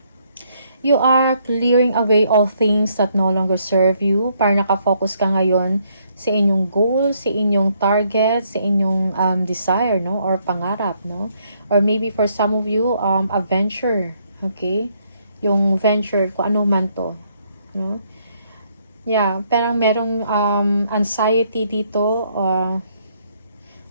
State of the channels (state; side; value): inverted; both; correlation -0.71